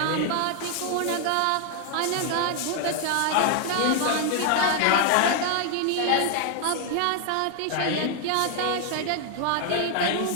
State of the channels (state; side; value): different; both; correlation 0.00